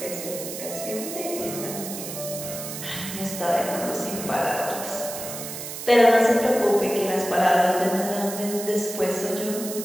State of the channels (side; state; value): right; noise; hiss, 8 dB below the sound